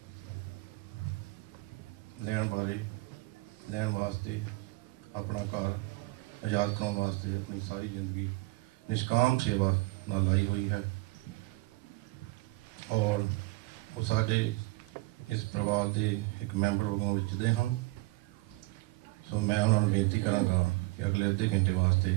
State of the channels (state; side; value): quieter; left; 22.7 dB